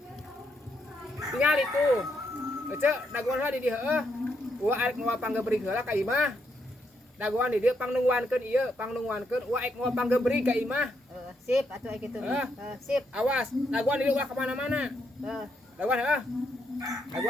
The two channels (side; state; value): both; normal; correlation 0.78